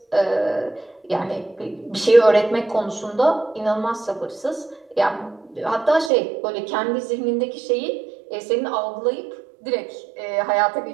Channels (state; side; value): drops out; left; at 6.1 s